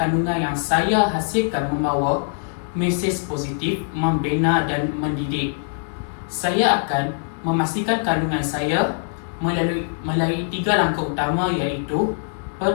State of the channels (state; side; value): silent; right; digital silence